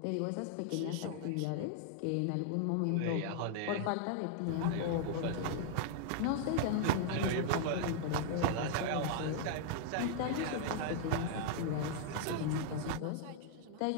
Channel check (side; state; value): both; different; correlation -0.01